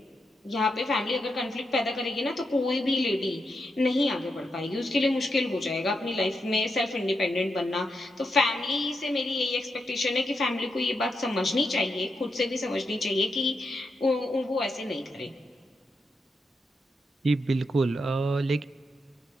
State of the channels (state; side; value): normal; both; correlation 0.84